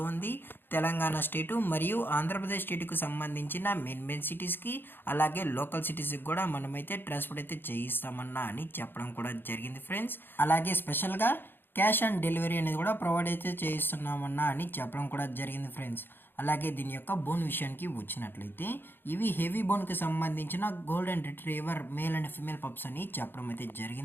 ఉంది. తెలంగాణ స్టేటు మరియు ఆంధ్రప్రదేశ్ స్టేట్కి సంబంధించిన మెయిన్ సిటీస్కి అలాగే లోకల్ సిటీస్కి కూడా మనమైతే ట్రాన్స్పోర్ట్ అయితే చేయిస్తామన్నా అని చెప్పడం కూడా జరిగింది ఫ్రెండ్స్. అలాగే స్పెషల్గా క్యాష్ ఆన్ డెలివరీ అనేది కూడా ప్రొవైడ్ అయితే చేయిస్తున్నామన్నా అని చెప్పడం కూడా జరిగింది ఫ్రెండ్స్. అలాగే దీని యొక్క బోన్ విషయానికి వచ్చినట్లయితే ఇవి హెవీ బోన్కి సంబంధించిన golden retriever male and female pups అని చెప్పడం అయితే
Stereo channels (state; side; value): late; right; 0.10 ms